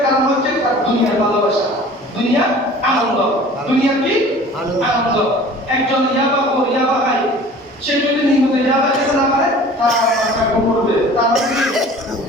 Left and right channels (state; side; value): normal; both; correlation 0.45